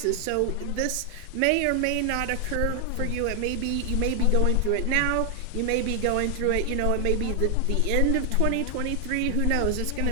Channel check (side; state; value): both; different; correlation 0.00